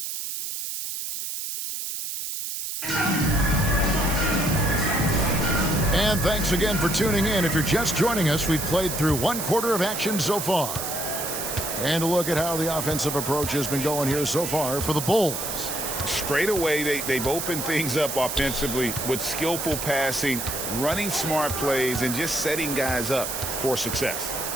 And thanks again for tuning in. If you're just joining us, we've played through one quarter of action so far. And a look at how the offensive approach has been going here so far for the Bulls. Straight away, they've opened things up offensively with skillful passing, running smart plays, and just setting guys up for success.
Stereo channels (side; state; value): right; noise; hiss, 5 dB below the sound